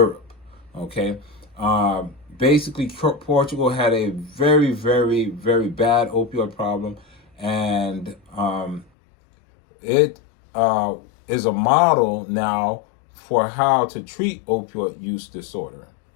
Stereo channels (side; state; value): right; drops out; at 8.8 s